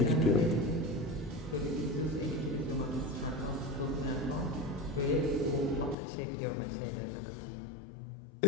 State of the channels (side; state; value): right; drops out; at 6.0 s